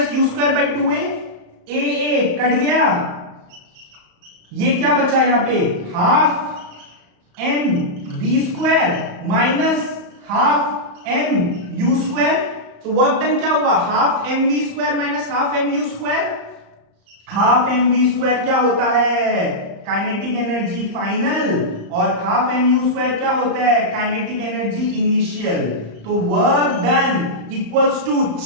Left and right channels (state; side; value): late; left; 35 ms